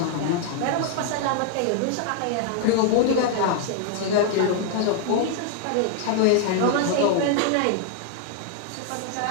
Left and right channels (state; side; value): different; both; correlation 0.00